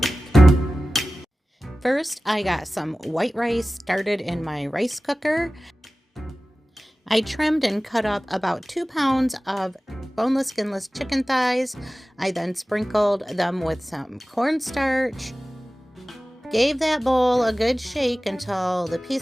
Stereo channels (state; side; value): normal; both; correlation 0.96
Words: First, I got some white rice started in my rice cooker. I trimmed and cut up about 2 pounds of boneless, skinless chicken thighs. I then sprinkled them with some cornstarch. Gave that bowl a good shake until the